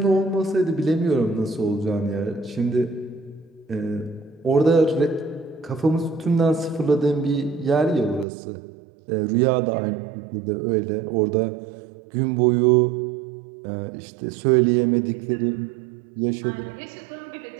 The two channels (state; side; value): drops out; left; at 8.2 s